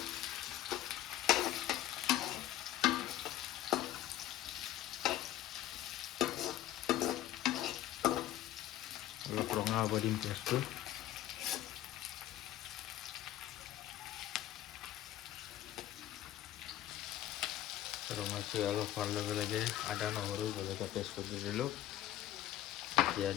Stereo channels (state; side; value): quieter; right; 13.1 dB